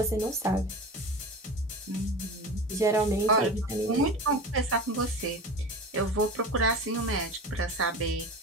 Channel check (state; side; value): normal; both; correlation 0.31